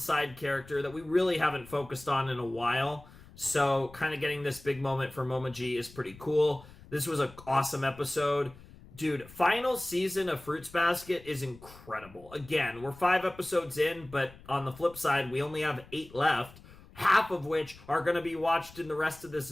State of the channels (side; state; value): left; noise; rumble, 21 dB below the sound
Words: character that we really haven't focused on in a while. So kind of getting this big moment for Momo G is pretty cool. This was an awesome episode. Dude, final season of Fruits Basket is incredible. Again, we're 5 episodes in, but on the flip side, we only have 8 left, half of which are going to be watched in the rest of this